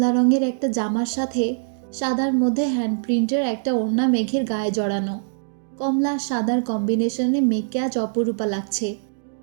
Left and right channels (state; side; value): silent; left; digital silence